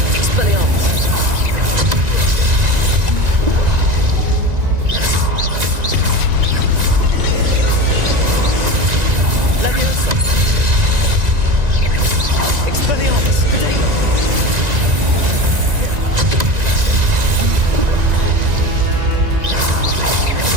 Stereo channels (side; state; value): left; late; 1.9 ms